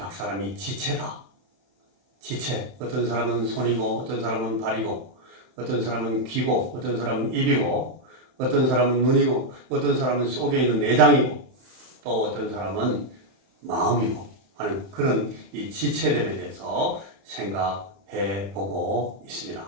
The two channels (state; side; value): late; left; 31 ms